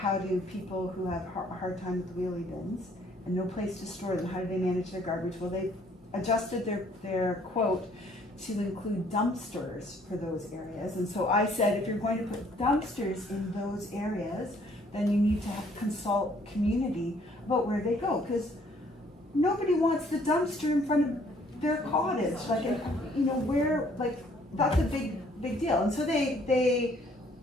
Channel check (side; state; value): both; normal; correlation 0.62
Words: do people who have a hard time with wheelie bins and no place to store them, how do they manage their garbage? Well, they adjusted their quote to include dumpsters for those areas. And so I said, if you're going to put dumpsters in those areas, then you need to consult community about where they go, because nobody wants the dumpster in front of their cottage, like, you know, where, like, that's a big deal. And so they